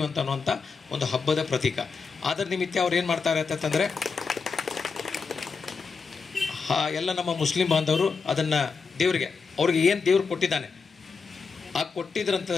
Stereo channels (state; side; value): quieter; right; 5.1 dB